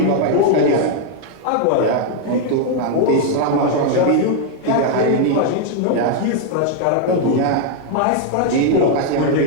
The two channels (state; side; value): different; both; correlation 0.00